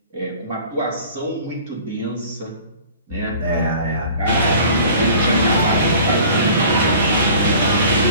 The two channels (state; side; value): inverted; both; correlation -0.46